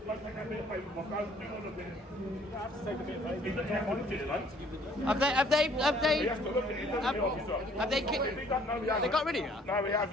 Like, take that bit of paper, my phone, do all of this. I have to take a bit of paper. He doesn't have to look at it, like. Have they He has to look at it, he doesn't the officer. Have they got rid of you? No, he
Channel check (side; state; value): both; normal; correlation 0.59